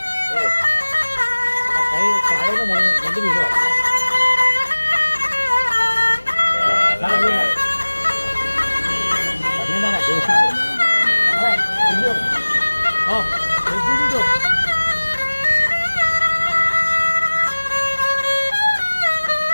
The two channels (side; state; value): both; inverted; correlation -1.00